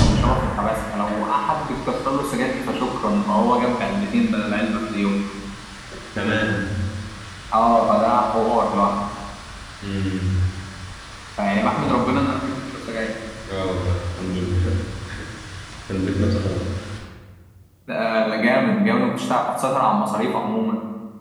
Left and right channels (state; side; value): identical; both; correlation 1.00